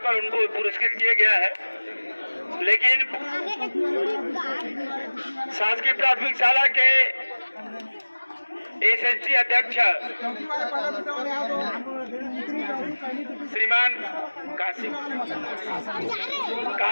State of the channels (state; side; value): inverted; both; correlation -1.00